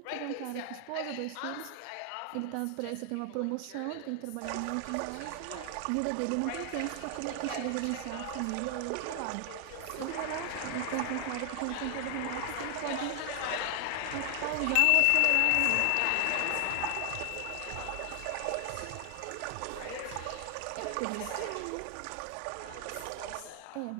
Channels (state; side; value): different; both; correlation 0.00